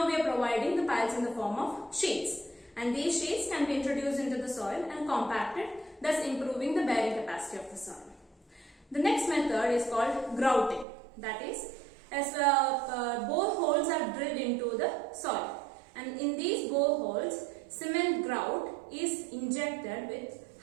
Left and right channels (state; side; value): drops out; left; at 10.9 s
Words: we are providing the piles in the form of sheets. And these sheets can be introduced into the soil and compacted, thus improving the bearing capacity of the soil. The next method is called grouting. That is, as boreholes are drilled into the soil. And in these boreholes, cement grout is injected with